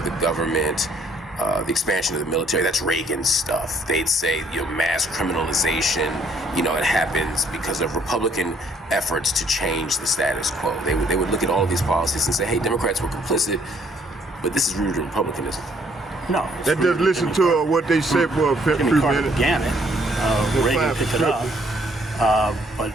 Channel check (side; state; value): both; normal; correlation 0.65